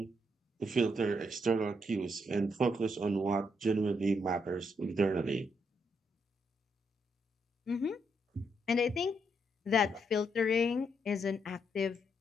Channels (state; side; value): normal; both; correlation 0.77